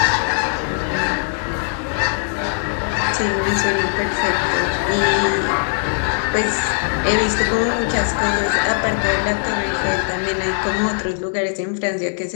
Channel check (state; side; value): silent; right; digital silence